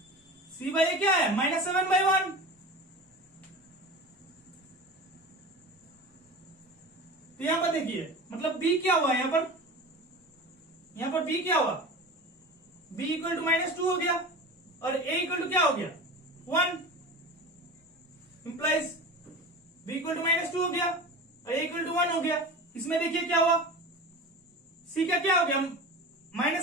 c बाय a क्या है? -7/1. तो यहां पर देखिए मतलब b क्या हुआ यहां पर? यहां पर b क्या हुआ? b इक्वल टू -2 हो गया और a इक्वल टू क्या हो गया? 1. इंप्लाइज b इक्वल टू -2 हो गया और a इक्वल टू 1 हो गया. इसमें देखिए क्या हुआ? c का क्या हो गया?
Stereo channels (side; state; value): both; normal; correlation 0.32